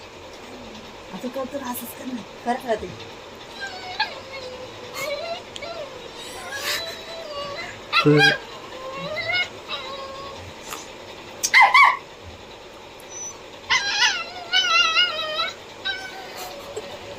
करतो असंच कर ना करत राहते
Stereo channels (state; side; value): identical; both; correlation 1.00